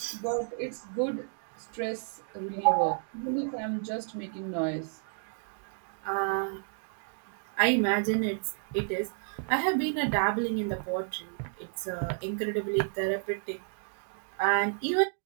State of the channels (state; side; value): silent; left; digital silence